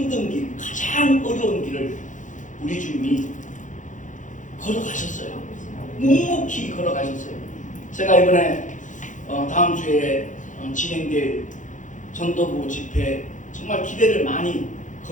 길, 가장 어려운 길을 우리 주님이 걸어가셨어요. 묵묵히 걸어가셨어요. 제가 이번에 다음 주에 진행될 전도부 집회 정말 기대를 많이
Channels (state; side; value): late; right; 0.37 ms